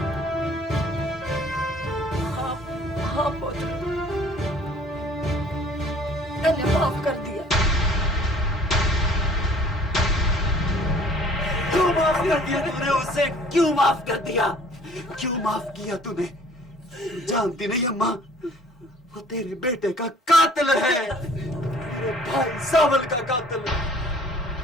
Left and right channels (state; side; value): normal; both; correlation 0.53